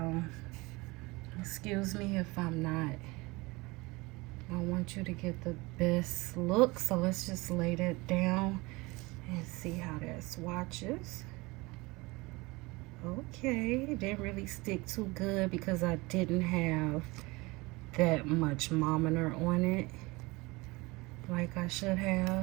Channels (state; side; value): quieter; left; 23.6 dB